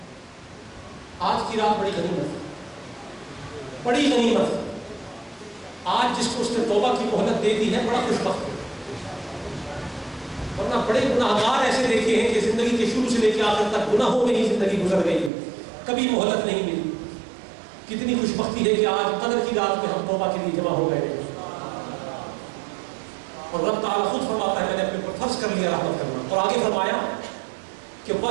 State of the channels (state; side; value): drops out; left; at 15.3 s